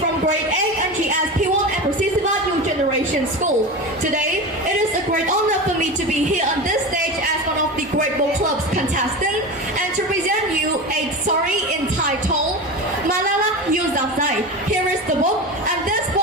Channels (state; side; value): normal; both; correlation 0.26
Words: Grade 8 NGS P1 at Sisowath New Generation School. Today, it is a great honor for me to be here on this stage as one of the Great Book Club's contestants and to present you a story entitled Malala Yousafzai. Here is the book, and this